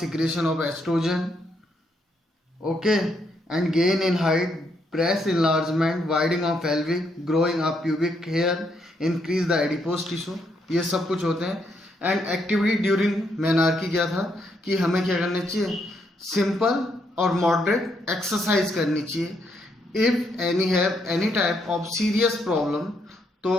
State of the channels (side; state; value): both; normal; correlation 0.76